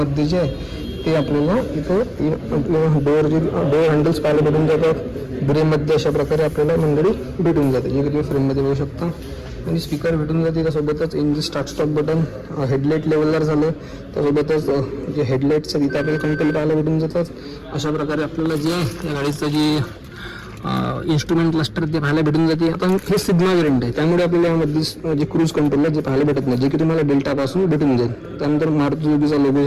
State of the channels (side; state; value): both; identical; correlation 1.00